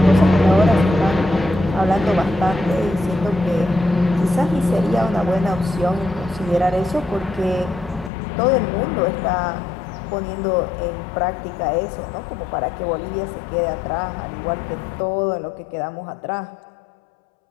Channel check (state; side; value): drops out; right; at 8.1 s